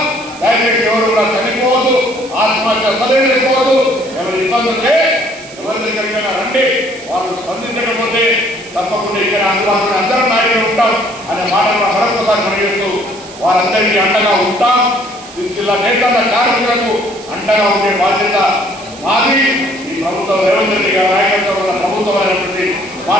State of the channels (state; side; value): noise; right; hiss, 17 dB below the sound